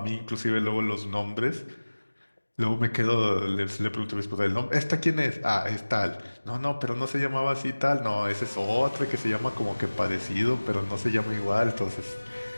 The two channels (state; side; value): inverted; both; correlation -1.00